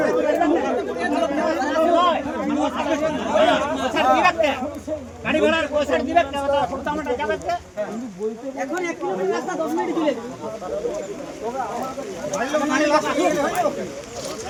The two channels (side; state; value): both; identical; correlation 1.00